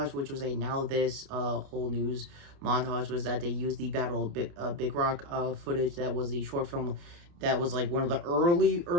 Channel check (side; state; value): left; late; 29 ms